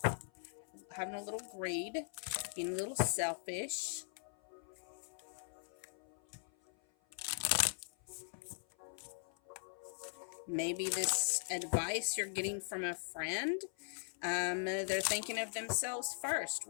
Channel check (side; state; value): right; silent; 51 dB below the other